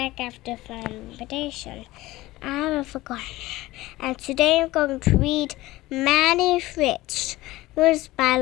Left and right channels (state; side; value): quieter; right; 18.2 dB